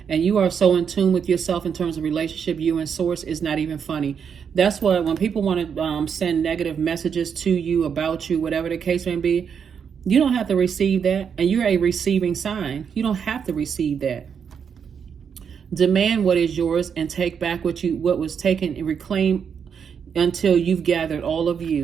And you are so in tune with yourself in terms of relationship, you and source, is not even funny. That's why when people want to send negative messages to you, about you, whatever the case may be, you don't have to receive that. And you're a receiving sign. You don't have to receive that. Demand what is yours and take back what was taken, and reclaim until you've gathered all of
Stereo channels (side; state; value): left; quieter; 7.1 dB